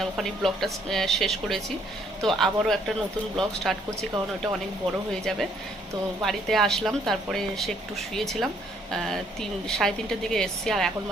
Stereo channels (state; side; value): normal; both; correlation 0.66